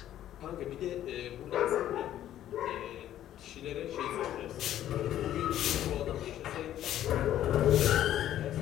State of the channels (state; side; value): quieter; right; 12.0 dB